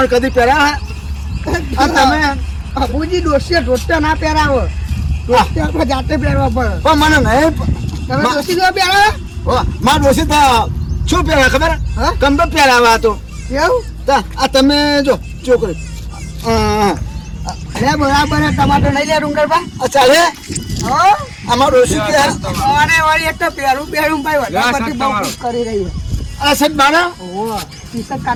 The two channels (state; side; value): identical; both; correlation 1.00